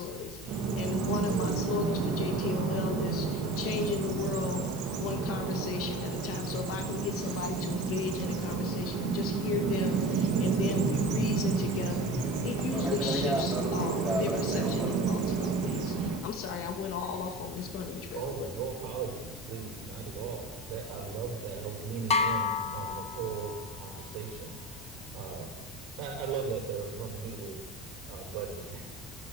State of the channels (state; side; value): normal; both; correlation 0.34